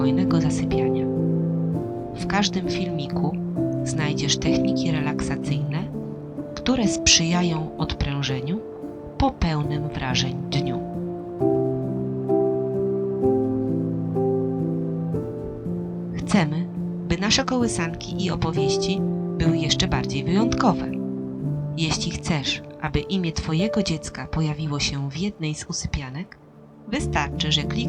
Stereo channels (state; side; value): identical; both; correlation 1.00